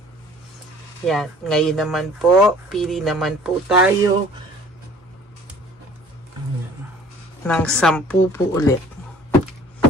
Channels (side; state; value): both; normal; correlation 0.51